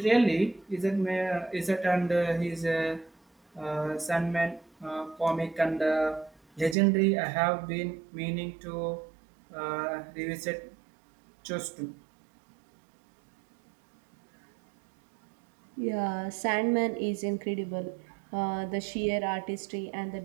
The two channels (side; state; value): left; drops out; at 6.8 s